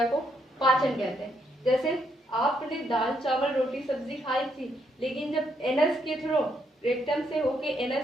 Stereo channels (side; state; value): both; normal; correlation 0.75